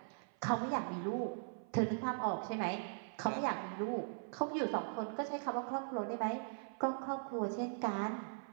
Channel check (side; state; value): left; silent; 51 dB below the other